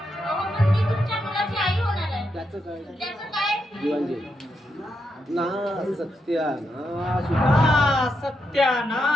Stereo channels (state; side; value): normal; both; correlation 0.82